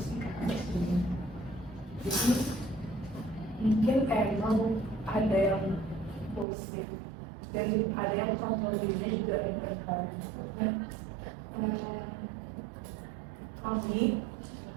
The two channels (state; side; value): drops out; left; at 6.5 s